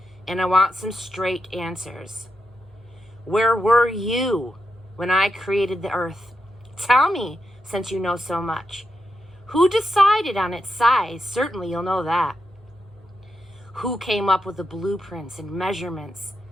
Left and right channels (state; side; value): normal; both; correlation 0.86